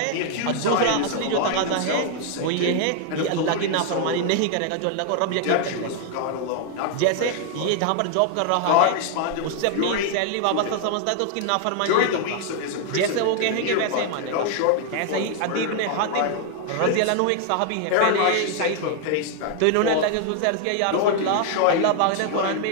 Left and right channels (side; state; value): both; different; correlation 0.00